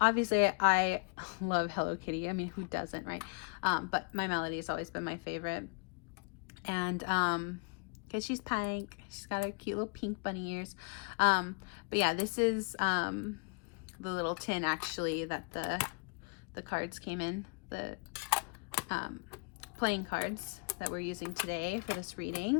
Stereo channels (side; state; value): right; quieter; 32.8 dB